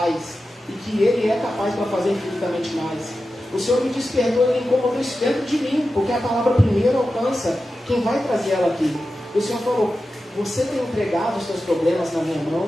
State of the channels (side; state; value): both; normal; correlation 0.92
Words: e que Ele é capaz para fazer infinitamente mais. O Senhor me despertou e incomodou isso dentro de mim, porque a palavra primeiro alcança quem vai trazer ela aqui. O Senhor falou: você tem entregado os seus problemas na minha